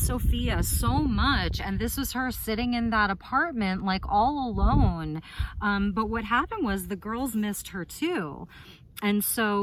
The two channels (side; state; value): both; identical; correlation 1.00